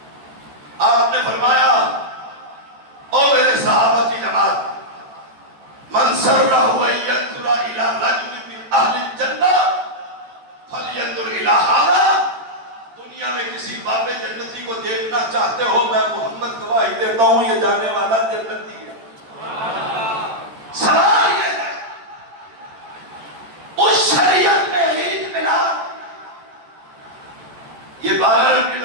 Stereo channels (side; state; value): left; late; 14 ms